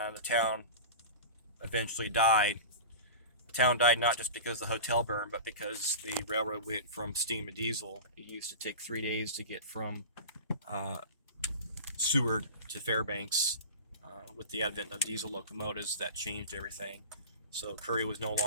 the town eventually died. The town died not just because the hotel burned, but because the railroad went from steam to diesel. It used to take 3 days to get from Seward to Fairbanks. With the advent of diesel locomotives, that changed everything. So Curry was no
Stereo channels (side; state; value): both; inverted; correlation -0.31